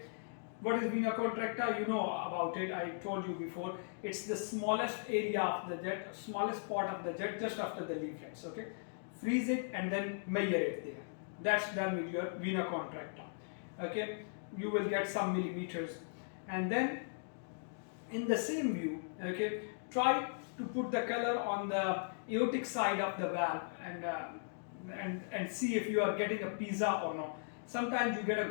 what is vena contracta? You know about it, I told you before. It's the smallest area of the jet, smallest part of the jet, just after the leaflets. Okay, freeze it and then measure it there. That's done with your vena contracta. Okay, you will get some millimeters. And then in the same view, okay, try to put the color on the aortic side of the valve and see if you are getting a pizza or not. Sometimes you get a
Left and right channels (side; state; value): right; silent; digital silence